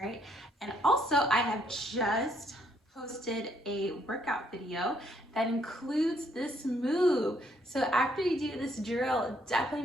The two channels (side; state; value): both; normal; correlation 0.70